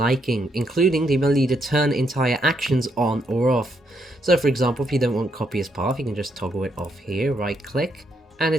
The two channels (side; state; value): both; normal; correlation 0.76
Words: including the ability to turn entire actions on or off. So for example, if you don't want copy as path, you can just toggle it off here, right click, and